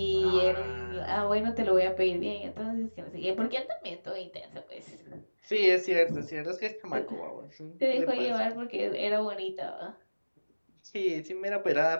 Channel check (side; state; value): both; inverted; correlation -1.00